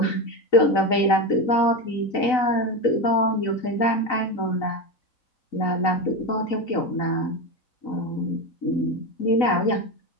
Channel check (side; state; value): right; late; 4.0 ms